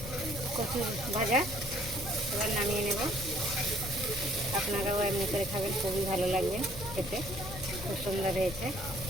কচু ভাজা। এবার নামিয়ে নেব। আপনারাও এমনি করে খাবেন, খুবই ভালো লাগবে খেতে। খুব সুন্দর হয়েছে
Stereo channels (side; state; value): left; noise; rumble, 10 dB below the sound